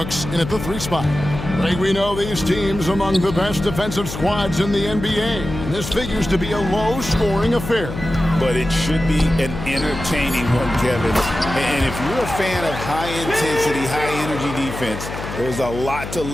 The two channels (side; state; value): left; noise; hum, 9 dB below the sound